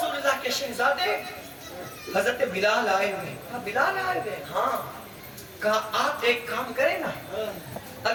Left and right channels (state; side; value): identical; both; correlation 1.00